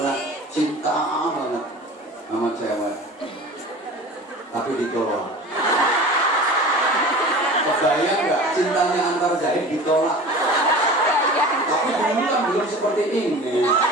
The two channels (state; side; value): normal; both; correlation 0.38